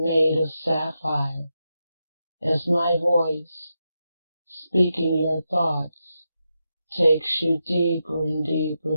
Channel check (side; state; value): both; inverted; correlation -0.87